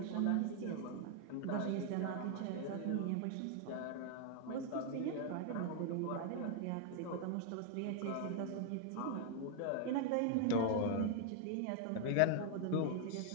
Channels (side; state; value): both; different; correlation 0.00